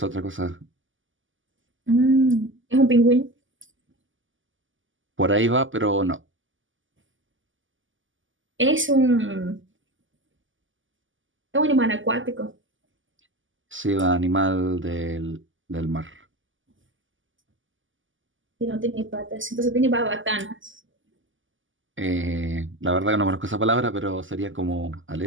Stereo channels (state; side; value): late; left; 0.57 ms